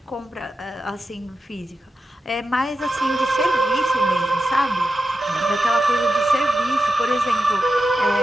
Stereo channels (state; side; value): normal; both; correlation 0.90